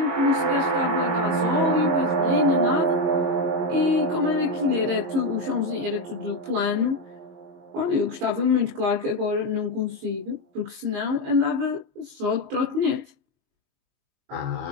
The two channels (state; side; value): late; left; 22 ms